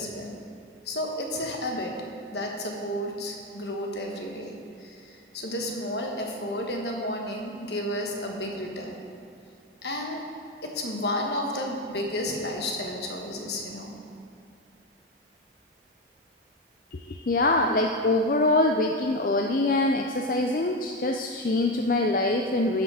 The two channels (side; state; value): both; normal; correlation 0.14